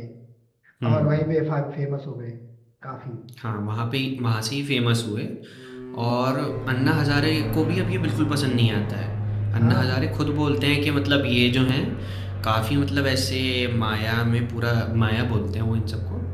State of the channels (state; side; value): identical; both; correlation 1.00